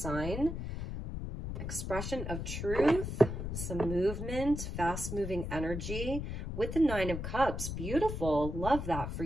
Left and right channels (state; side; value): noise; left; rumble, 5 dB below the sound